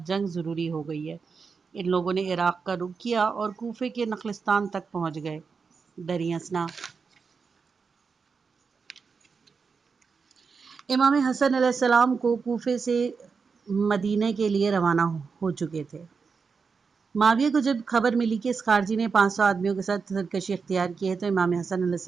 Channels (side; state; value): left; quieter; 5.3 dB